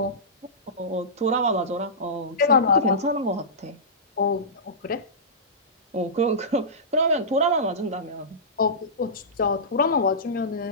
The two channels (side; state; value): both; normal; correlation -0.19